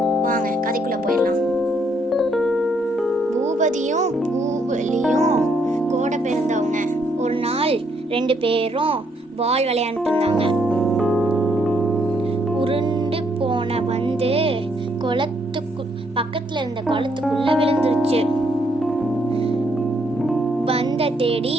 வாங்க கதைக்குள்ளே போயிடலாம். பூபதியும் பூவிலியும் கூட பிறந்தவங்க. ஒரு நாள் 2 பேரும் பால் விளையாண்டுட்டு இருந்தாங்க. உருண்டு போன வந்து பக்கத்துல இருந்த குளத்துக்குள்ள விழுந்துருச்சு. பந்த தேடி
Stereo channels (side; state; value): both; normal; correlation 0.72